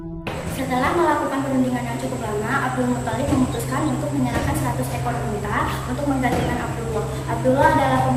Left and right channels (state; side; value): identical; both; correlation 1.00